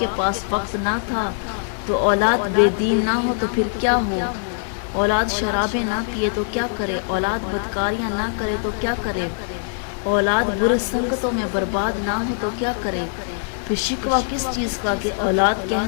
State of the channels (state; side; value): silent; right; digital silence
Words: پاس وقت نہ تھا تو اولاد بے دین نہ ہو تو پھر کیا ہو؟ اولاد شرابیں نہ پیے تو کیا کرے؟ اولاد بدکاریاں نہ کرے تو کیا کرے؟ اولاد برے سنگتوں میں برباد نہ ہو تو کیا کرے؟ پھر شکوہ کس چیز کا کہ اولاد